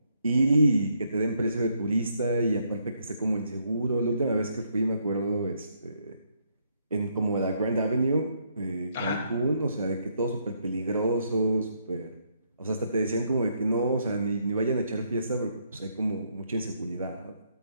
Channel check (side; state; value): both; inverted; correlation -0.73